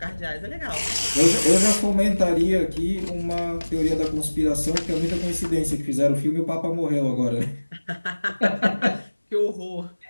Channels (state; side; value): inverted; both; correlation -1.00